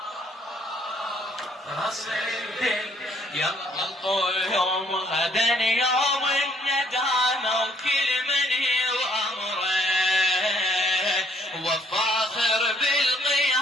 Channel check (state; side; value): normal; both; correlation 0.65